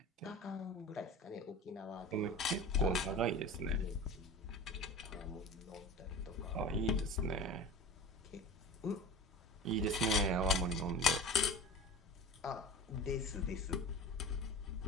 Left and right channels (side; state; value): both; normal; correlation 0.34